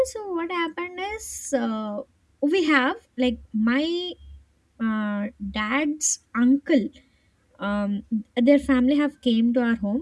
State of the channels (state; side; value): identical; both; correlation 1.00